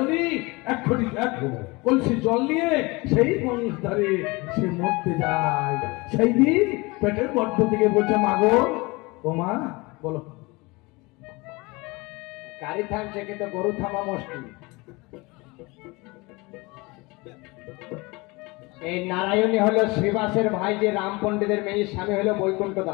এক কলসি জল নিয়ে সেই গঙ্গার ধারে সে মরতে যায়। সেই দিন পেটের গর্ভ থেকে বলছে মা গো, ও মা বলো। গাড়ি থামছে কিন্তু গরু থামা মুশকিল। এই নারায়ণী হলো শ্রীবাসের ভাই, যে রাম পণ্ডিতের মেয়ে, স্বামী হলো বৈকুণ্ঠ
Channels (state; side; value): quieter; right; 24.7 dB